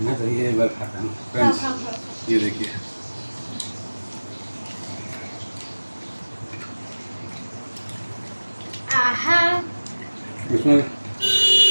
मैं, तो ये एक बार खाता हूँ फ्रेंड्स। ये देखिए इसमें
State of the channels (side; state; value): both; inverted; correlation -1.00